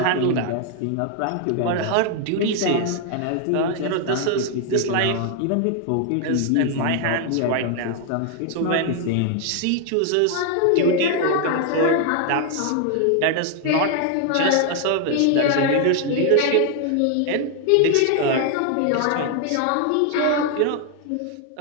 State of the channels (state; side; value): different; both; correlation 0.00